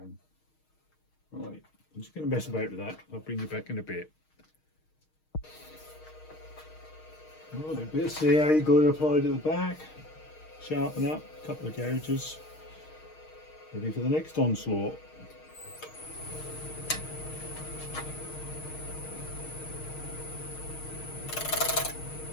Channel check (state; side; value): late; right; 6.4 ms